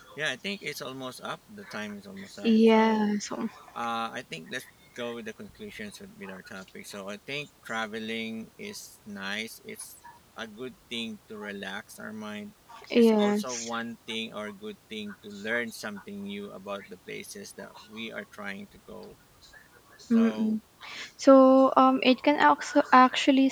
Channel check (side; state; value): both; identical; correlation 1.00